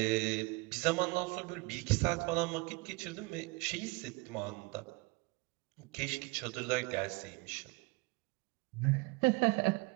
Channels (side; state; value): left; quieter; 25.2 dB